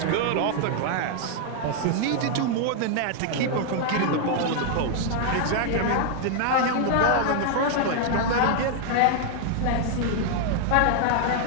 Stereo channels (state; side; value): different; both; correlation 0.00